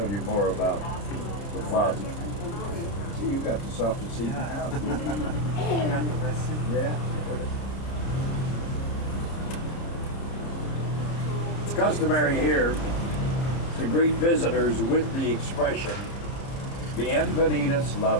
you more about the plaza. See, you got the softest seat in the house. Yeah. It's customary here to greet visitors with the expression, Bienvenidos la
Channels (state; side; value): late; right; 30 ms